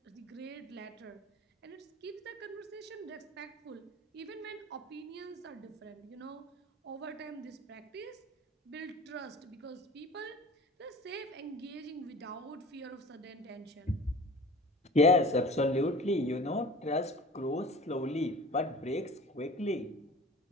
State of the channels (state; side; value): normal; both; correlation 0.40